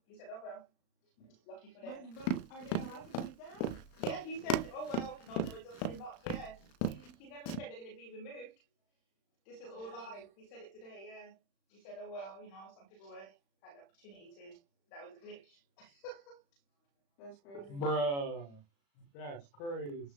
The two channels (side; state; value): right; late; 35 ms